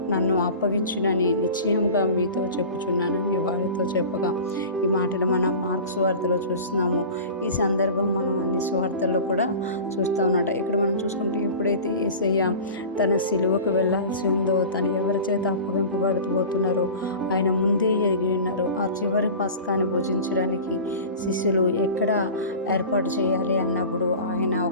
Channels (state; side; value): inverted; both; correlation -0.36